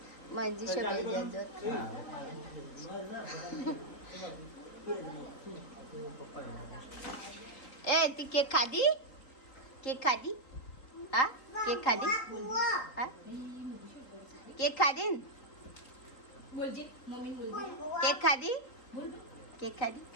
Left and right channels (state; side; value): late; right; 3.8 ms